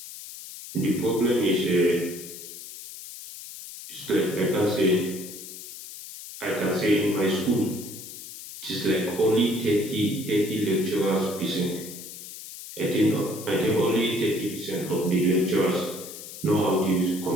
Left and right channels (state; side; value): noise; left; hiss, 13 dB below the sound